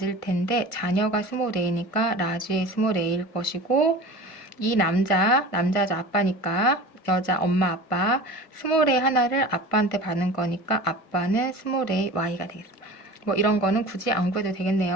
텐데 자녀가 스몰 a니까 라지 a 스몰 a일 것이고, 이 남자죠. 아빠니까 여자 엄마 아빠 스몰 a 하나를 아빠한테 받는 거니까 아빠는 스몰 a y가 되겠습니다. 뭐 이런 거는 굳이 안 구해도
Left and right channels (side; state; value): right; late; 1.5 ms